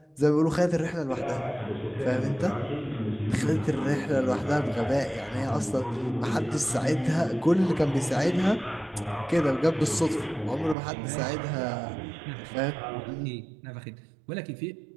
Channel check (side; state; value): left; drops out; at 10.8 s